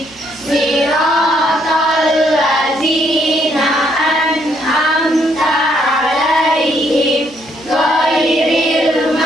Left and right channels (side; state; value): right; noise; hum, 26 dB below the sound